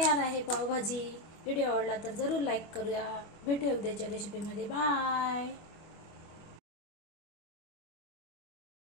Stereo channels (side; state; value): right; late; 25 ms